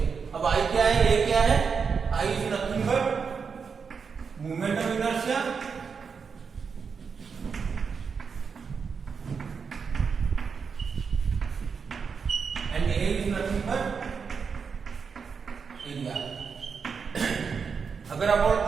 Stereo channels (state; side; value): quieter; left; 5.8 dB